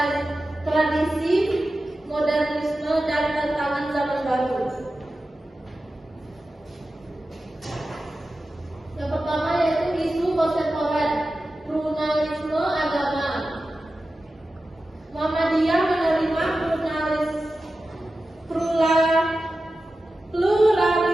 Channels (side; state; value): both; normal; correlation 0.93